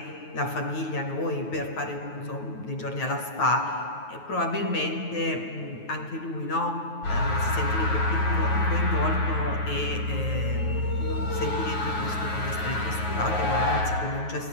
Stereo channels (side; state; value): right; late; 9.4 ms